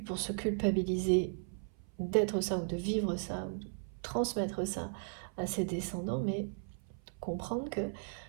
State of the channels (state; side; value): silent; left; 54 dB below the other